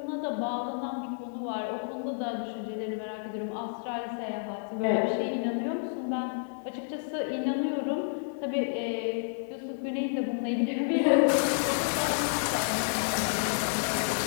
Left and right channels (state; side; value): silent; right; digital silence